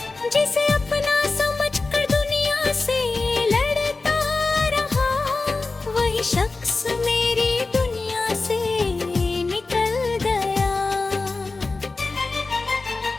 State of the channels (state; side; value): quieter; right; 3.7 dB